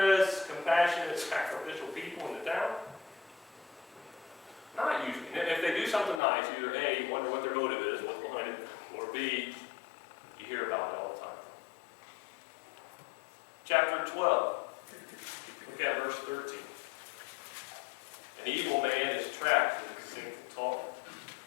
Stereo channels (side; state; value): right; drops out; at 6.2 s